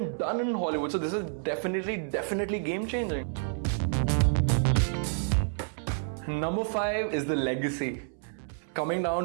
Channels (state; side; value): silent; left; 58 dB below the other